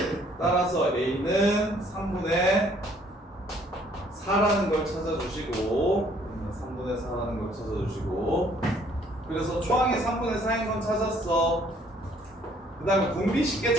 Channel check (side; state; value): both; normal; correlation 0.62